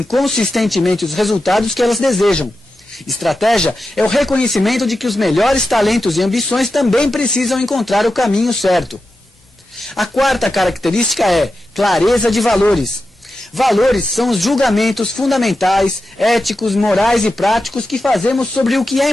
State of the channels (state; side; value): normal; both; correlation 0.91